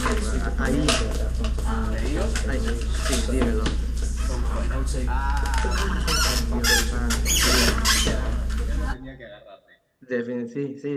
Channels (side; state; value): both; identical; correlation 1.00